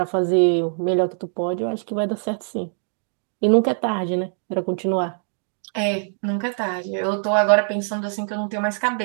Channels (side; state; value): left; silent; digital silence